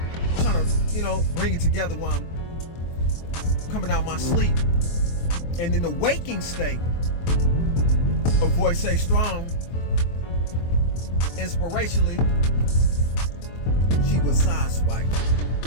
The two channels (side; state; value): right; late; 23 ms